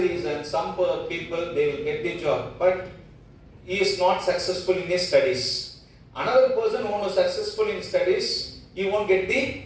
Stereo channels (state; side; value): identical; both; correlation 1.00